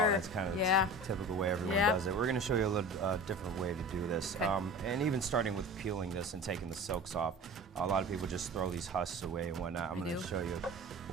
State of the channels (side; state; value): both; normal; correlation 0.37